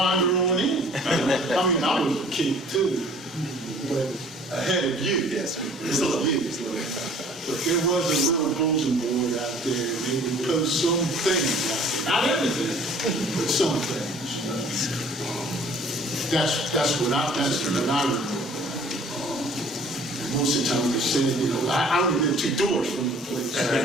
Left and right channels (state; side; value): normal; both; correlation 0.52